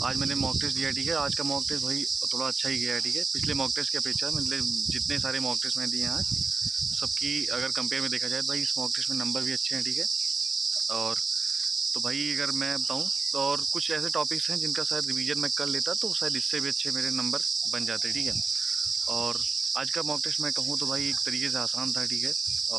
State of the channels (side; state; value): left; quieter; 4.4 dB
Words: आज मैंने मॉक टेस्ट दिया है, ठीक है। आज का मॉक टेस्ट भाई थोड़ा अच्छा ही गया है, ठीक है। पिछले मॉक टेस्ट की अपेक्षा मतलब जितने सारे मॉक टेस्ट मैंने दिए हैं आज, सबकी अगर कंपेयर में देखा जाए तो भाई इस मॉक टेस्ट में नंबर भी अच्छे हैं, ठीक है। और तो भाई अगर मैं बताऊं तो और कुछ ऐसे टॉपिक्स हैं जिनका शायद रिवीजन मैं कर लेता तो शायद इससे भी अच्छे मेरे नंबर बन जाते, ठीक है। और आज का मॉक टेस्ट मैं कहूँ तो भाई एक तरीके से आसान था, ठीक है।